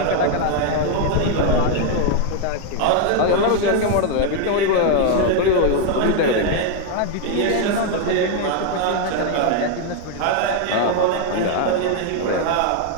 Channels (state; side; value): different; both; correlation 0.00